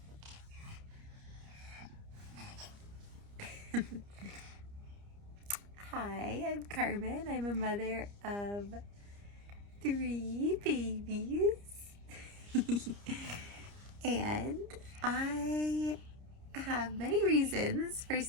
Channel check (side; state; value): left; late; 30 ms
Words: Hi, I'm Carmen. I'm a mother of 3 babies. And I have many reasons for